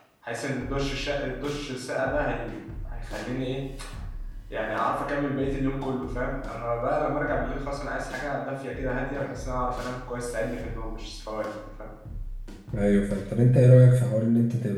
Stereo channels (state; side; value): identical; both; correlation 1.00